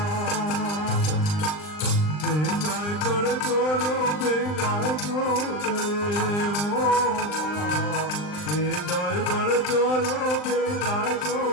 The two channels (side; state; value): right; late; 39 ms